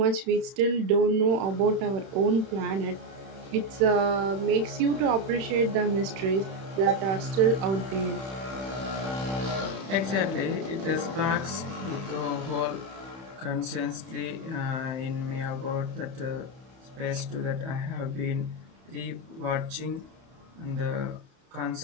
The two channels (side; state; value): left; late; 31 ms